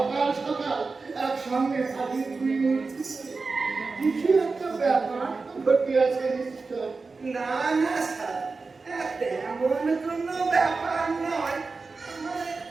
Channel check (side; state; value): left; quieter; 4.1 dB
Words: সকাল একসঙ্গে হাজির হইল, কিছু একটা ব্যাপার ঘটিয়াছে নিশ্চয়। না না স্যার, তেমন কোনো ব্যাপার নয়। মানে